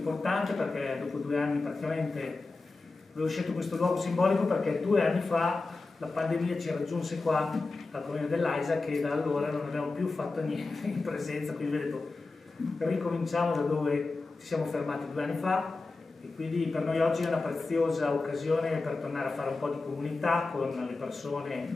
perché dopo 2 anni praticamente avevo scelto questo luogo simbolico perché 2 anni fa la pandemia ci raggiunse qua al comune dell'Aisa che da allora non abbiamo più fatto niente in presenza, quindi ho detto ricominciamo da dove ci siamo fermati 2 anni fa e quindi per noi oggi è una preziosa occasione per tornare a fare un po' di comunità con le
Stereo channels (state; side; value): quieter; right; 3.6 dB